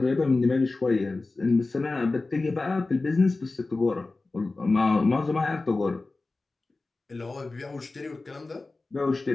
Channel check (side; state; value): right; quieter; 3.4 dB